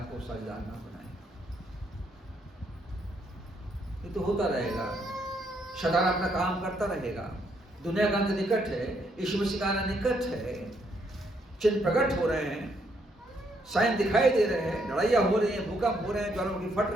को साझेदार ना बनाएं। ये तो होता रहेगा, शैतान अपना काम करता रहेगा। दुनिया का अंत निकट है, यीशु मसीह का आना निकट है, चिन्ह प्रकट हो रहे हैं, साइन दिखाई दे रहे हैं, लड़ाइयाँ हो रही हैं, भूकंप हो रहे हैं, ज्वालामुखी फट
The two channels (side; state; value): both; normal; correlation 0.73